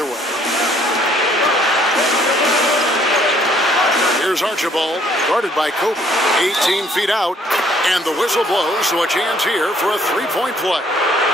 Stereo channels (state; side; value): normal; both; correlation 0.62